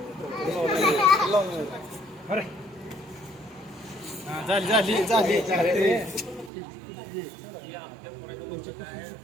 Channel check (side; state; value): left; drops out; at 6.5 s